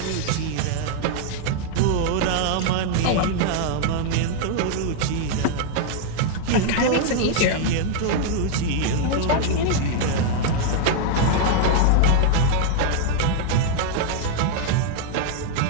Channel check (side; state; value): both; different; correlation 0.00